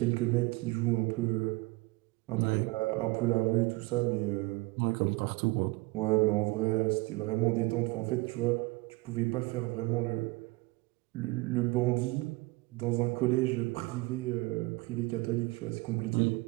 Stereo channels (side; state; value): left; quieter; 23.1 dB